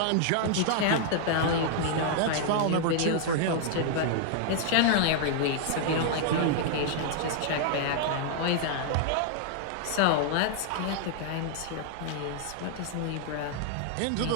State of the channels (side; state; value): both; different; correlation -0.01